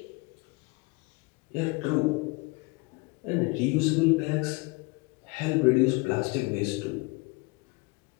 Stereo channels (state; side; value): quieter; right; 27.4 dB